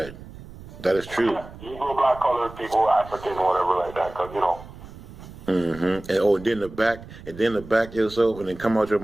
That is true. Negro, black, colored people, African, whatever like that, because, you know. And then the back yourself and then come out your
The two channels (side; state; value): right; noise; rumble, 16 dB below the sound